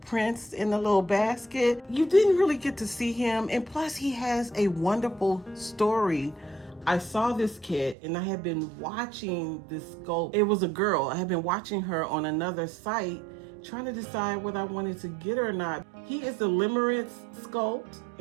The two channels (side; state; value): left; drops out; at 8.0 s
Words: in the little basket. You didn't really get to see him, and plus he has a wonderful story. I saw this kid and I had been watching this sculpt. It was a girl. I had been watching her on another site trying to decide whether I wanted to get her or not. He is the Limerence sculpt